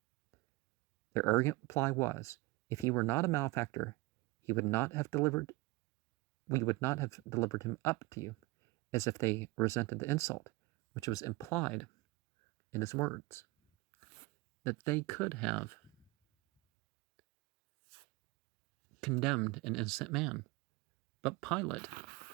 Their arrogant reply was, if he were not a malefactor, we would not have delivered him up to you, as if they resented the insult, which was implied in his words, that they could have condemned an innocent man. But Pilate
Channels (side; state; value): left; quieter; 22.3 dB